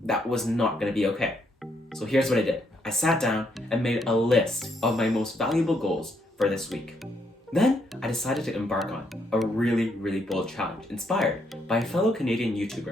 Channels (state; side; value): normal; both; correlation 0.74